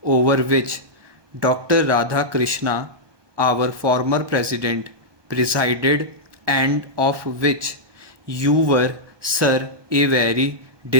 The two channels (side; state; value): left; late; 1.2 ms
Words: over which Dr. Radha Krishna, our former president, presided, and of which you were, sir, a very